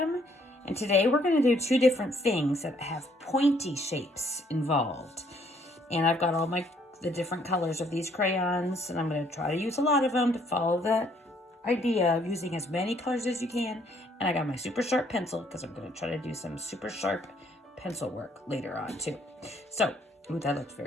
And today we're gonna do two different things that have pointy shapes involved. And I've got all the different colors of these crayons, and I'm gonna try to use a lot of them to follow the idea of using as many colors as you can. And I got my super sharp pencil because I'm gonna try to do some super sharp pencil work later on too. So, ooh, that looks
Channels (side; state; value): both; normal; correlation 0.66